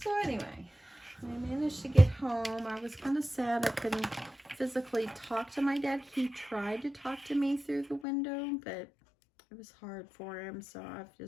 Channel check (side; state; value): right; drops out; at 8.1 s